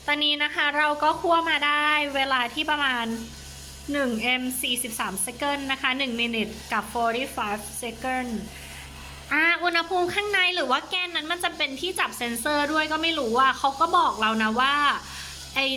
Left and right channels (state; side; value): identical; both; correlation 1.00